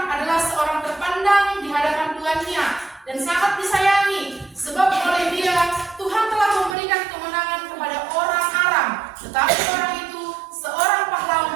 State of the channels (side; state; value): left; drops out; at 6.8 s